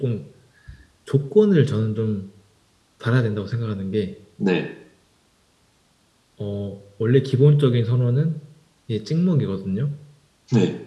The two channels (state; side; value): identical; both; correlation 1.00